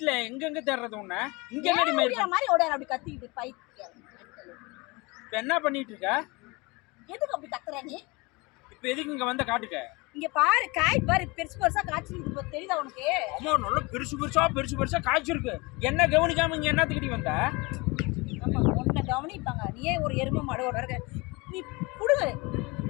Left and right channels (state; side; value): quieter; right; 25.7 dB